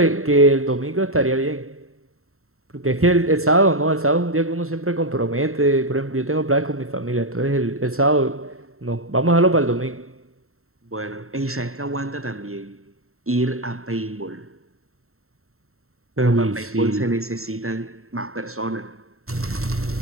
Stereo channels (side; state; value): left; late; 0.63 ms